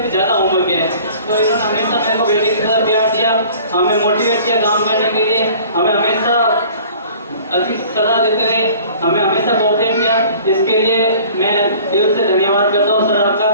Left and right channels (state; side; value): inverted; both; correlation -0.48